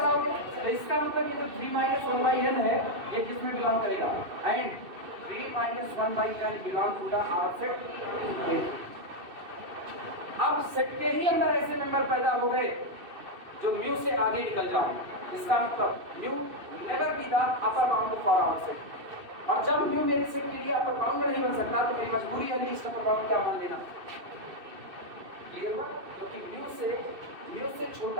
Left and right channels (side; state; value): left; late; 2.6 ms